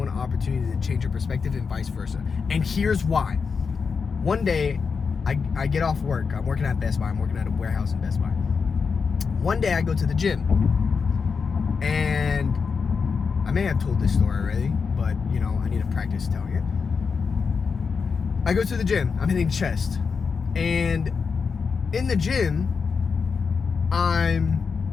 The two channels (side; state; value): right; quieter; 5.5 dB